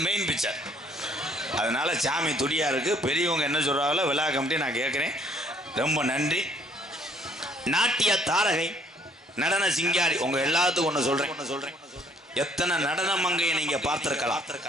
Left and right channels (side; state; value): both; normal; correlation 0.62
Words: மெயின் பிக்சர். அதனால சாமி துடியா இருக்கு. பெரியவங்க என்ன சொல்றாங்களோ விழா கமிட்டி நான் கேட்குறேன். ரொம்ப நன்றி. நாட்டிய தாரகை, நடன சிங்காரி, உங்க எல்லாத்துக்கும் ஒன்று சொல்றேன். எத்தனை நடன மங்கையை நீங்க பார்த்திருக்கலாம்.